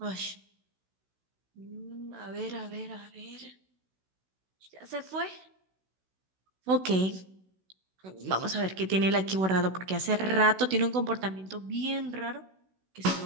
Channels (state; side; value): late; left; 16 ms